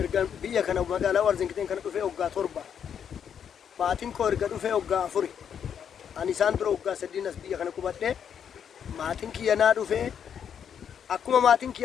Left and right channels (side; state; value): right; quieter; 8.1 dB